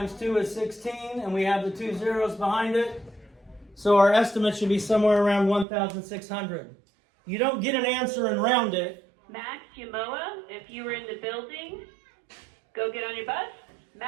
2 is 16. And we have the 2 zeros behind it. So our estimate should be somewhere around 1,600. You don't get an answer and round it. Max Yamoa, if you were in the building, go get on your bus.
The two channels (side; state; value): left; drops out; at 5.7 s